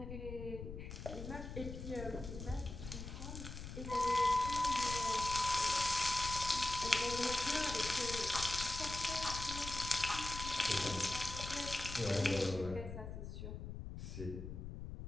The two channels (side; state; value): left; noise; rumble, 8 dB below the sound